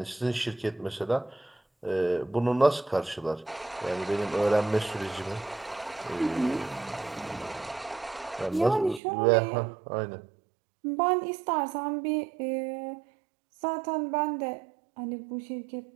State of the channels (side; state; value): left; drops out; at 9.0 s